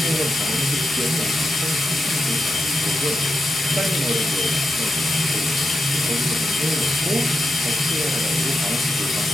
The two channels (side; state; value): both; normal; correlation 0.87